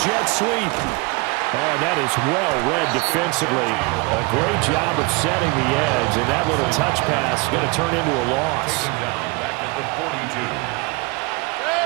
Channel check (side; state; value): left; quieter; 27.4 dB